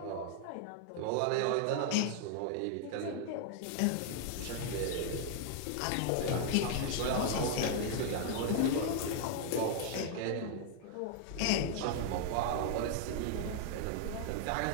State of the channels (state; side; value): different; both; correlation 0.00